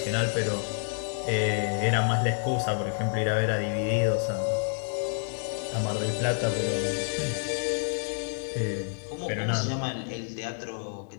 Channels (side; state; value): right; silent; 59 dB below the other